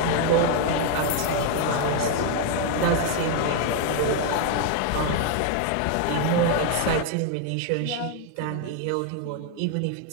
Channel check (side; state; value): both; different; correlation 0.01